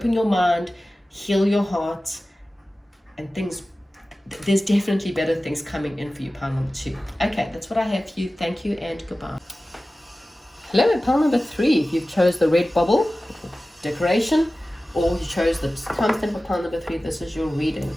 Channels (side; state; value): both; normal; correlation 0.96